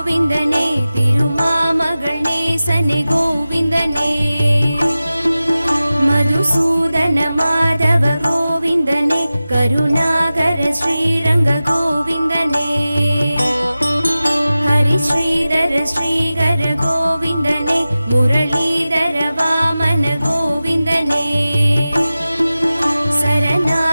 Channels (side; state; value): both; inverted; correlation -0.96